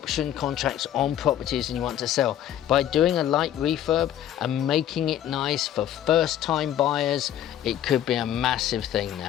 contracts on properties and you want to sell, by doing a light refurb and making it nice for first-time buyers, it could be a massive thing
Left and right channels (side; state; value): right; quieter; 11.3 dB